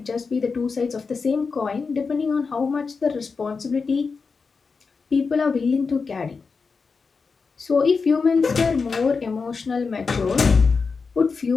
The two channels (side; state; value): right; quieter; 4.9 dB